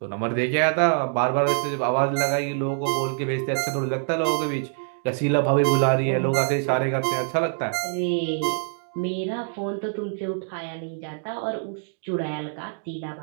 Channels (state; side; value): silent; left; digital silence